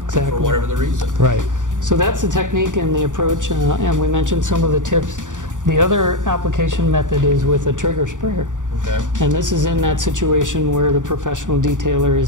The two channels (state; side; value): late; left; 0.87 ms